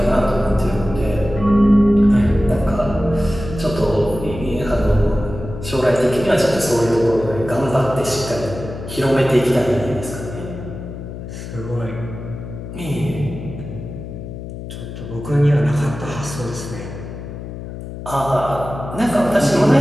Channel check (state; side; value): noise; left; hum, 10 dB below the sound